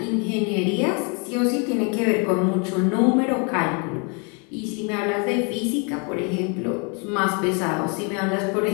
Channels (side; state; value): right; quieter; 35.2 dB